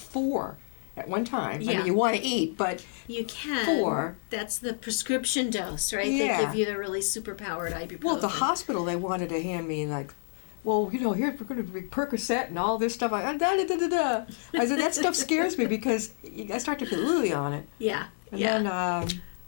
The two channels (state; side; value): silent; right; digital silence